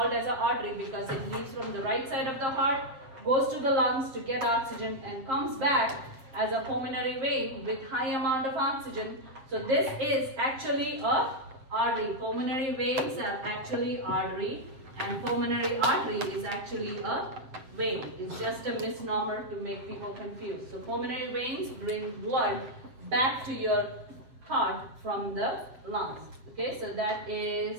as an artery because it leaves from the right side of the heart, goes to the lungs to get oxygen, and comes back as a pulmonary vein with high amount of oxygen. So this is actually a artery. Pulmonary veins are actually artery, and pulmonary artery is actually a vein. It's just a misnomer to make people confused. So pulmonary veins bring blood back to your heart from the lungs. Okay, so that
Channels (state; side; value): late; left; 7.6 ms